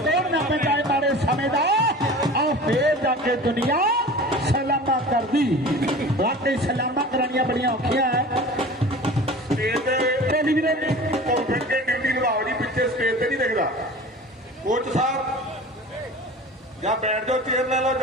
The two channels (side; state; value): both; normal; correlation 0.38